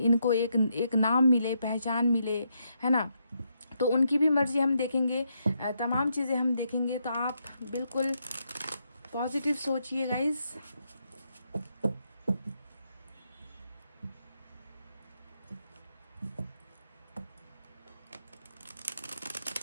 एक नाम मिले, पहचान मिले, है ना। तो उनकी भी मर्जी हम देखेंगे, तमाम चीज़ें हम देखेंगे। तो आप बिल्कुल पॉजिटिव सोचिए गाइस।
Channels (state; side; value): inverted; both; correlation -0.79